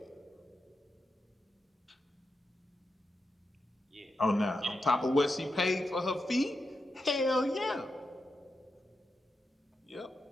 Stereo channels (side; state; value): both; normal; correlation 0.88